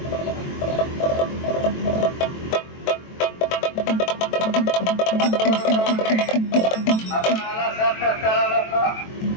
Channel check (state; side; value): late; right; 23 ms